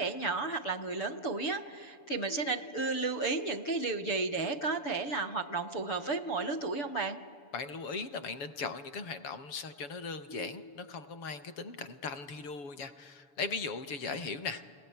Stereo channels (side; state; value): right; late; 7.0 ms